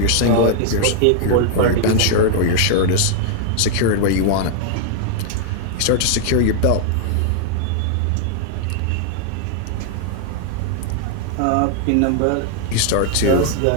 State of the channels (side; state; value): both; different; correlation 0.00